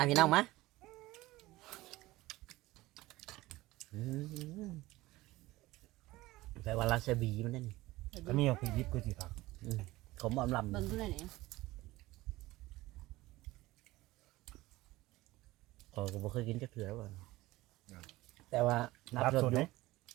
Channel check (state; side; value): quieter; left; 18.6 dB